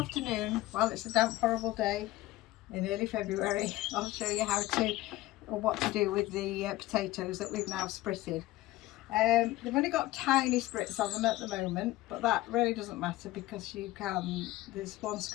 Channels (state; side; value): quieter; right; 17.3 dB